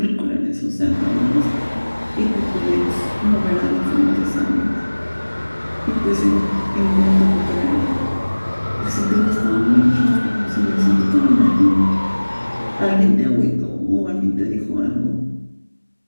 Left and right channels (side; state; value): both; inverted; correlation -1.00